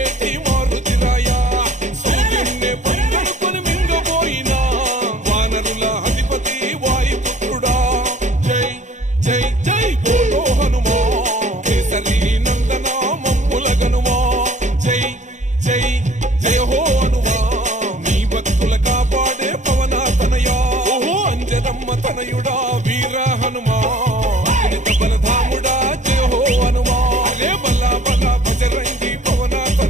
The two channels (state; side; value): late; left; 0.35 ms